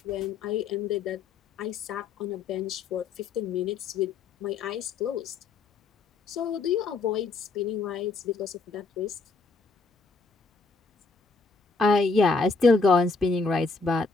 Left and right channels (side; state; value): right; quieter; 4.2 dB